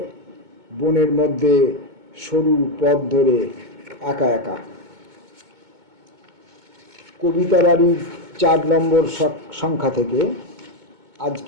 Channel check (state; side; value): late; left; 2.2 ms